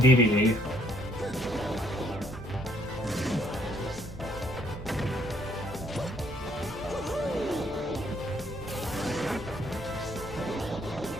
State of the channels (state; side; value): noise; left; rumble, 17 dB below the sound